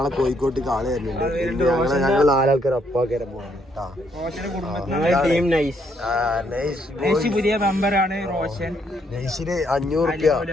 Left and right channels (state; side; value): normal; both; correlation 0.72